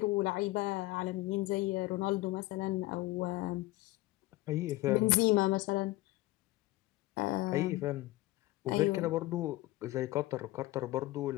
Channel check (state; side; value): quieter; right; 18.6 dB